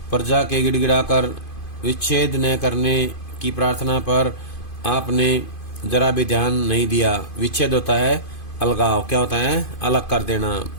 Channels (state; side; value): late; right; 2.5 ms